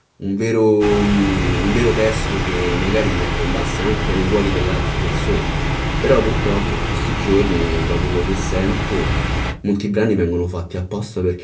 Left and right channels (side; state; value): both; identical; correlation 1.00